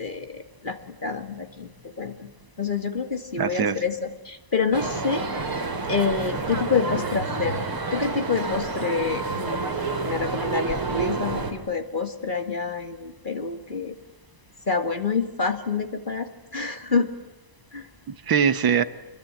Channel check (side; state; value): left; late; 1.0 ms